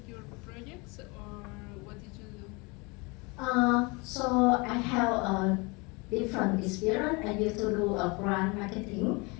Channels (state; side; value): quieter; right; 28.0 dB